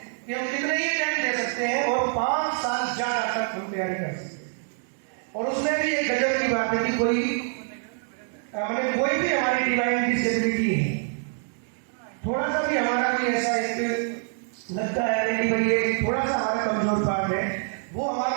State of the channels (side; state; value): left; silent; 58 dB below the other